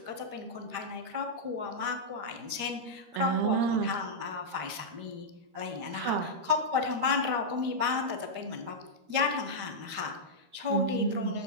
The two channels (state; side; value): late; left; 13 ms